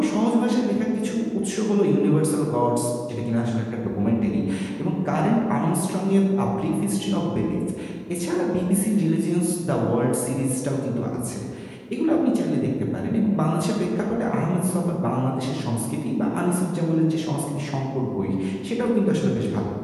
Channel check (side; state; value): both; identical; correlation 1.00